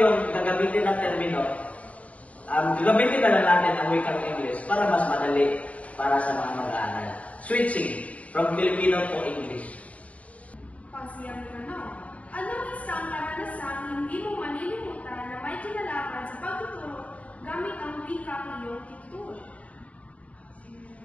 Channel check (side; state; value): right; late; 0.067 ms